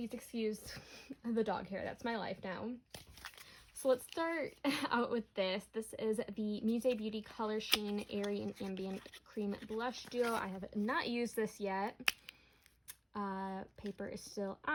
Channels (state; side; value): identical; both; correlation 1.00